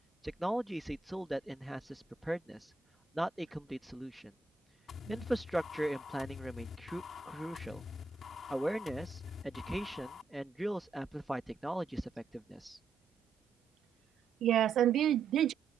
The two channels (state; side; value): quieter; left; 4.6 dB